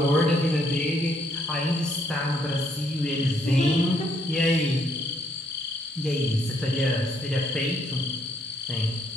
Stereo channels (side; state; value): both; normal; correlation 0.70